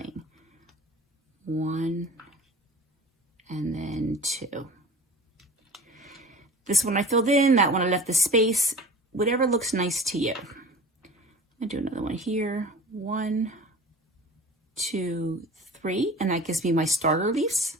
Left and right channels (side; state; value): both; normal; correlation 0.39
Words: 1 and then 2. This one I filled in, that one I left the space, whatever looks nice to you. I'm gonna do another one here. 1, 2, 3, and that gives me my starter leaves.